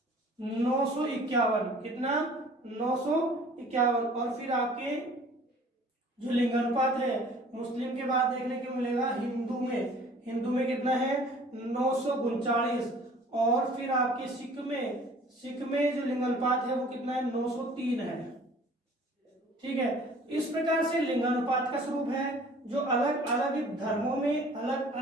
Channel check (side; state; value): both; normal; correlation 0.51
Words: 951। कितना? 951। और फिर आपके जो लिंगानुपात है मुस्लिम के बाद देखने को मिलेगा हिंदू में कितना है? 939। और फिर आपके सिख में जो लिंगानुपात है वो कितना है? 903 है। ठीक है, इस प्रकार से लिंगानुपात का स्वरूप है जो अलग अलग धर्मों में अलग